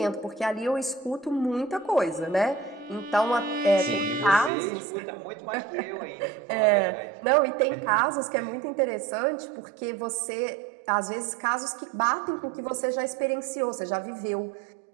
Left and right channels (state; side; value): drops out; left; at 4.5 s